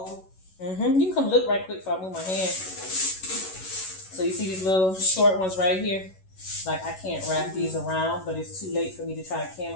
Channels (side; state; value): right; late; 11 ms